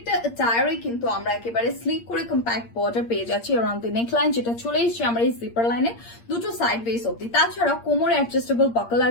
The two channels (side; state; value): right; late; 8.6 ms